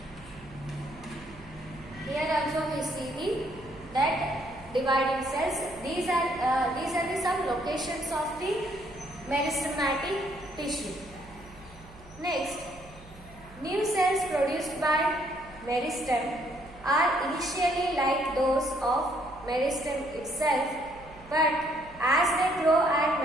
see the that dividing cells. These are the some locations of the meristematic tissue. Next, new cells produced by meristem are initially like those of meristem itself, but as they grow and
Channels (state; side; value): noise; right; hum, 21 dB below the sound